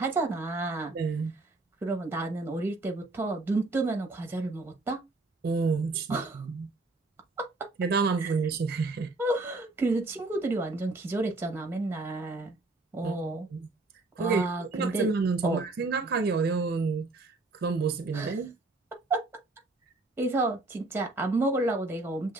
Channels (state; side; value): quieter; left; 3.2 dB